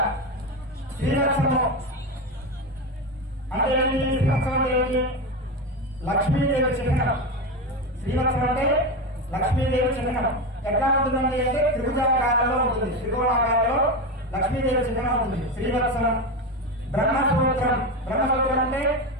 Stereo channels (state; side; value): normal; both; correlation 0.17